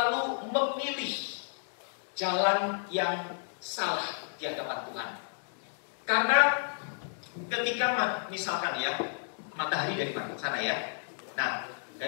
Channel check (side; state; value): right; silent; digital silence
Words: memilih jalan yang salah di hadapan Tuhan. Karena ketika misalkan ya, matahari dari sana ya, nah